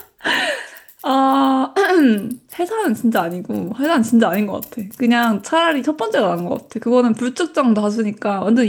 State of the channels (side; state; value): both; identical; correlation 1.00